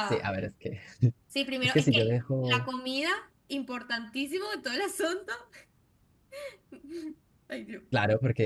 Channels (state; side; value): identical; both; correlation 1.00